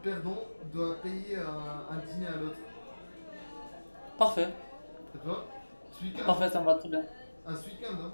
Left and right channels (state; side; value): inverted; both; correlation -1.00